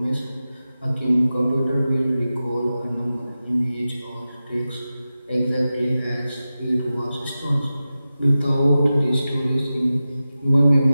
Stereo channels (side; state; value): both; inverted; correlation -0.94